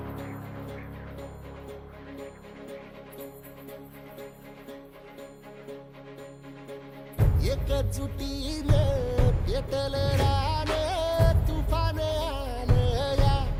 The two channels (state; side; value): identical; both; correlation 1.00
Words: एकजुटीनं पेटल रान तुफान आलया